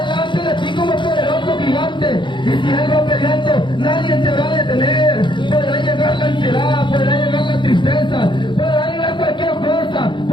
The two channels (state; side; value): late; right; 0.23 ms